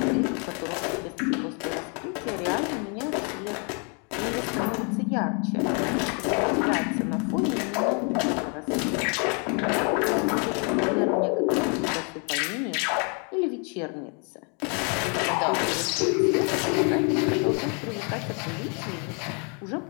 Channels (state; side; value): quieter; right; 37.2 dB